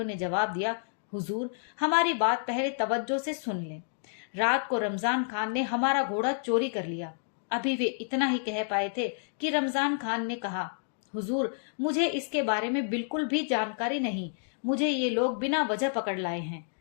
ने जवाब दिया, हुजूर, हमारी बात पहले तवज्जो से सुन लें। रात को रमजान खान ने हमारा घोड़ा चोरी कर लिया। अभी वे इतना ही कह पाए थे कि रमजान खान ने कहा, हुजूर, मुझे इसके बारे में बिल्कुल भी जानकारी नहीं, मुझे ये लोग बिना वजह पकड़ लाए हैं।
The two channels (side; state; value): right; silent; digital silence